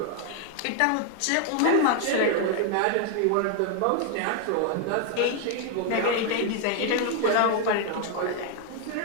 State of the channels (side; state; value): both; different; correlation 0.00